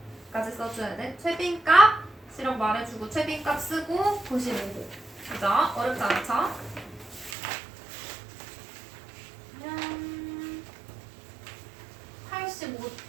써줘야 돼. 최빈값이라고 말해주고 최빈값 쓰고 95호. 그죠? 어렵지 않죠?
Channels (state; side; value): drops out; left; at 7.4 s